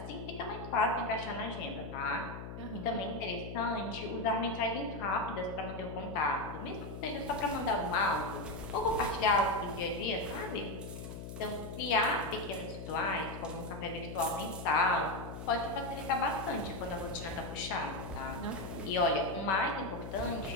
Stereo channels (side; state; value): left; noise; hum, 9 dB below the sound